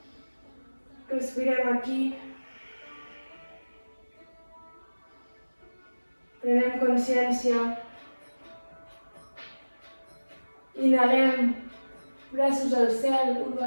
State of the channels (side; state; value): both; inverted; correlation -1.00